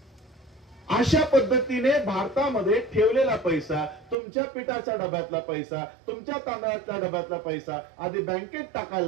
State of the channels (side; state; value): left; drops out; at 4.2 s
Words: अशा पद्धतीने भारतामध्ये ठेवलेला पैसा, तुमच्या पिठाच्या डब्यातला पैसा, तुमच्या तांदळाच्या डब्यातला पैसा आधी बँकेत